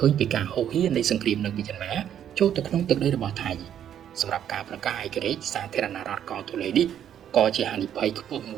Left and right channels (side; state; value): left; quieter; 9.8 dB